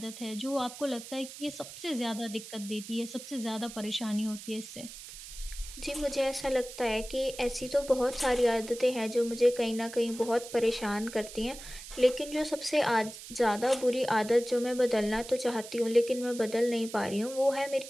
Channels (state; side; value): noise; right; hiss, 13 dB below the sound